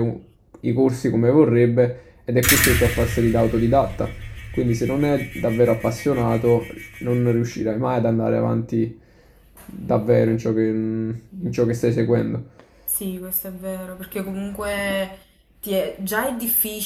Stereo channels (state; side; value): identical; both; correlation 1.00